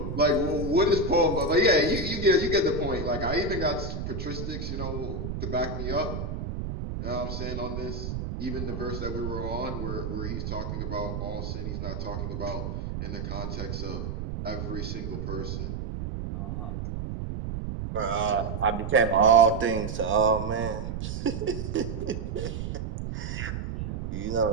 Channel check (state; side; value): noise; right; rumble, 5 dB below the sound